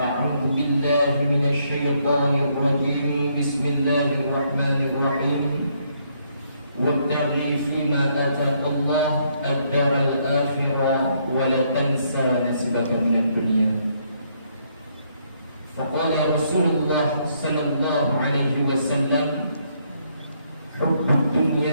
بالله من الشيطان الرجيم بسم الله الرحمن الرحيم وابتغ فيما آتاك الله الدار الآخرة ولا تنسى نصيبك من الدنيا. فقال رسول الله صلى الله عليه وسلم: حب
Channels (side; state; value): both; inverted; correlation -0.72